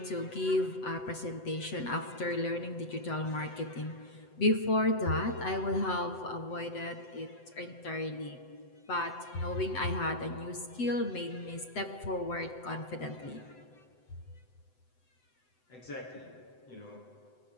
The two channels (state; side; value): late; right; 7.9 ms